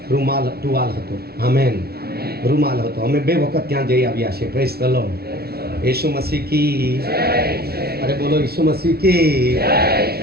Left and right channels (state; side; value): late; left; 0.45 ms